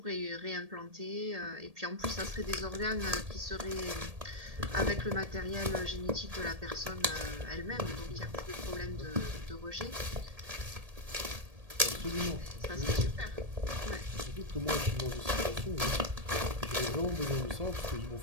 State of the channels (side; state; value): left; late; 1.7 ms